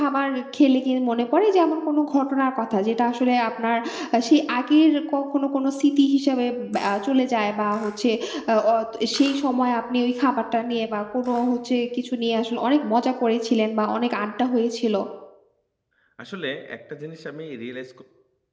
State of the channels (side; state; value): both; identical; correlation 1.00